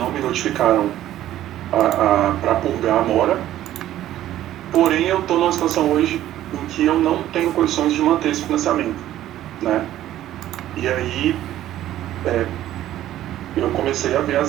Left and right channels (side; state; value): left; quieter; 13.1 dB